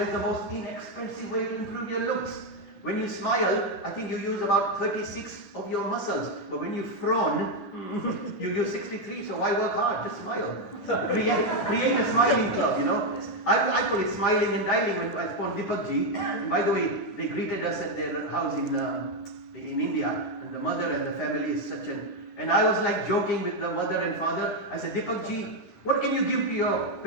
is the most inexpensive way to improve your looks. When you smile, I think you use about 36 of your muscles. But when you frown, you use 63. So why work hard? Just smile. Create a smiling club, I call it smiling and dialing when I spawned Deepak ji. And by the way, they greeted us at their house in India. And the mother and the family is such an... And I was like joking with the mother and father. I said, Deepak ji, what can you give to your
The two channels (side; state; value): right; late; 9.9 ms